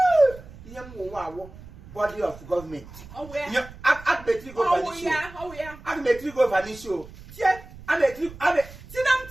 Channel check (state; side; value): noise; right; rumble, 18 dB below the sound